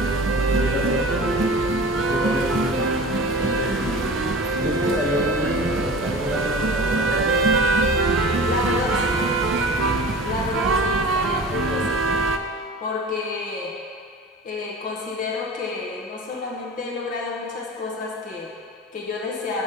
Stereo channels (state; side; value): normal; both; correlation 0.37